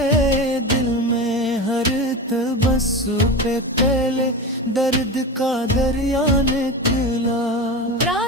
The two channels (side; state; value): both; normal; correlation 0.25